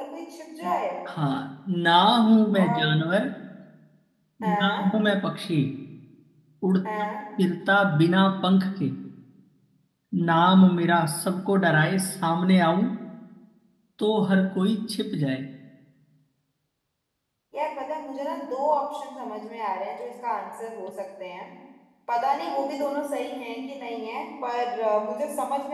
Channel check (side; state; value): both; identical; correlation 1.00